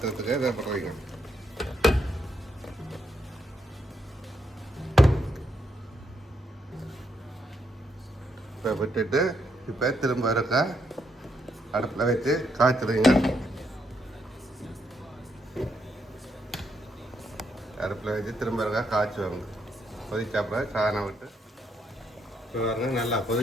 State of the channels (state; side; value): normal; both; correlation 0.77